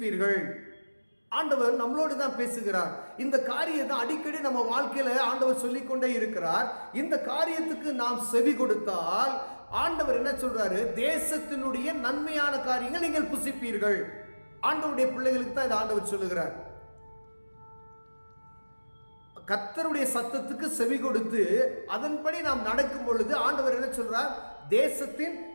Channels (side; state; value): both; inverted; correlation -1.00